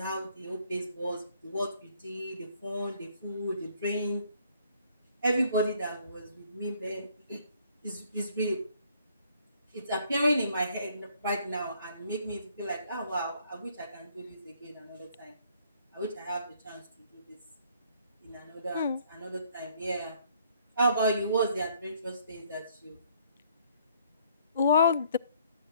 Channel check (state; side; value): inverted; both; correlation -0.63